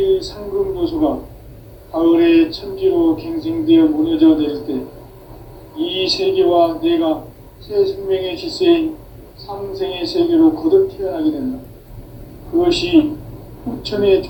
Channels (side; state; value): both; identical; correlation 1.00